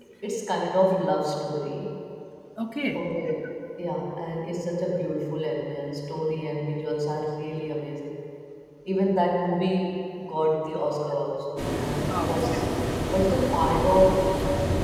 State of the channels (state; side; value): identical; both; correlation 1.00